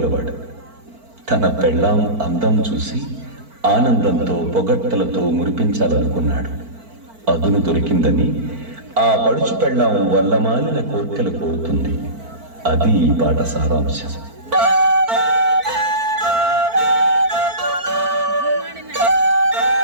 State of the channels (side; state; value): left; late; 4.5 ms